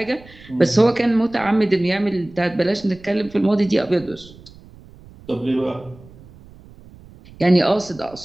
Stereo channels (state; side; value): noise; right; rumble, 22 dB below the sound